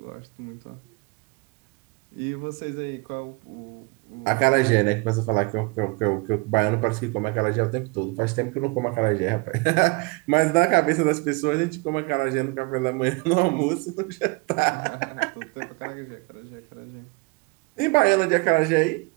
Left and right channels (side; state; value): left; quieter; 27.3 dB